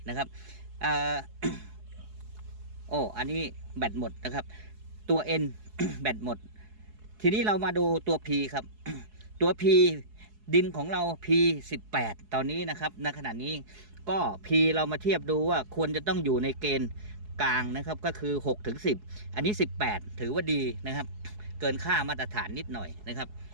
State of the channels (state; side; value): late; left; 4.7 ms